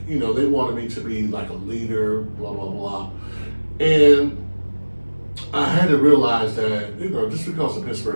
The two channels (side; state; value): both; inverted; correlation -1.00